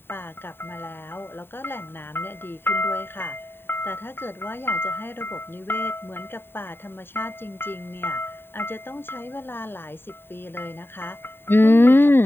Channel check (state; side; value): late; right; 0.11 ms